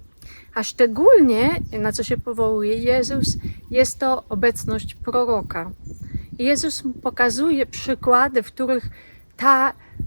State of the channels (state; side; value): inverted; both; correlation -1.00